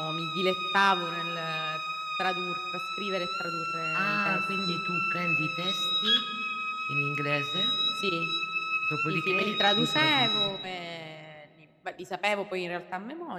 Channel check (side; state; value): both; identical; correlation 1.00